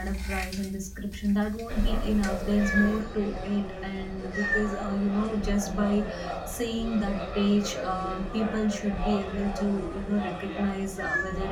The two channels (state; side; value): identical; both; correlation 1.00